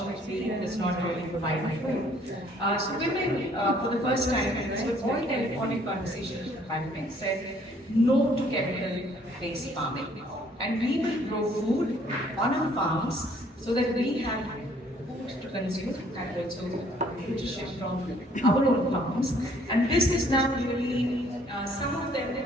does not really provide food. So women, for the first time, and this was all telephonic conversations with the pandemic, said no to chemical-based farming. And we will grow food on our farms so that we have food to consume and also nutrition from our own farms. And this is now really, some of them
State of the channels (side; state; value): both; normal; correlation 0.61